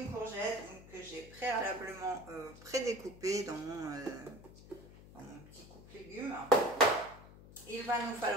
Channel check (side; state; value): left; noise; hum, 18 dB below the sound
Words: courgette que j'ai préalablement prédécoupée dans mon petit coupe légumes. Il va nous